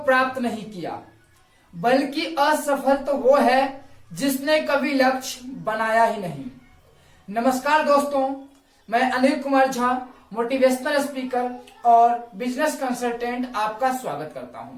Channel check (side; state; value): both; identical; correlation 1.00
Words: प्राप्त नहीं किया, बल्कि असफल तो वो है जिसने कभी लक्ष्य बनाया ही नहीं। नमस्कार दोस्तों, मैं अनिल कुमार झा, मोटिवेशनल स्पीकर और बिजनेस कंसल्टेंट आपका स्वागत करता